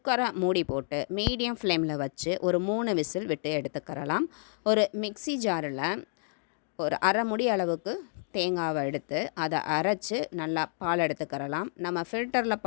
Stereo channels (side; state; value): right; silent; digital silence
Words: மூடி போட்டு மீடியம் ஃப்ளேமில் வச்சு ஒரு 3 விசில் விட்டு எடுத்துக்கிறலாம். ஒரு மிக்ஸி ஜாரில் ஒரு அரை முடி அளவுக்கு தேங்காவை எடுத்து அதை அரைச்சி நல்லா பால் எடுத்துக்கிறலாம். நம்ம ஃபில்டரில்